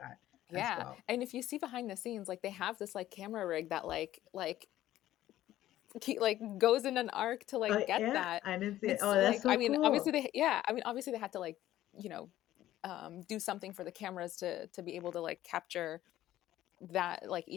as Yeah. well. And if you see behind the scenes, like they have this like camera rig that like goes in an arc to Oh like get yeah, that. I didn't see And it. it's Oh, that's like, so I mean, obviously cool. they, yeah, I mean, obviously they had to like, you know, do something for the cameras to be able to like capture that, like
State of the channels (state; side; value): quieter; right; 13.8 dB